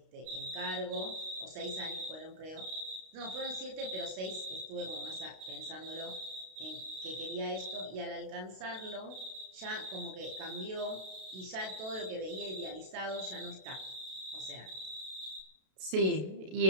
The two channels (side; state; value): left; late; 32 ms